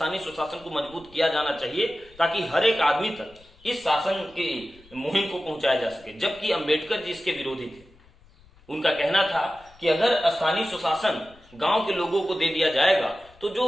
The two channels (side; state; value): left; noise; rumble, 27 dB below the sound